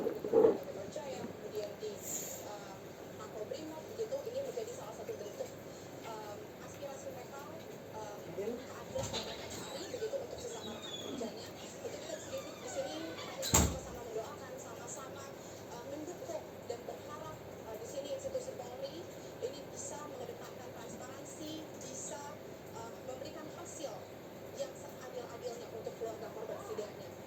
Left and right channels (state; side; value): identical; both; correlation 1.00